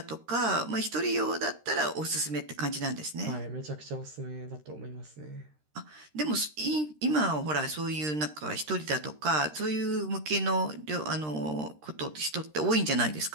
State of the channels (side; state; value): left; late; 13 ms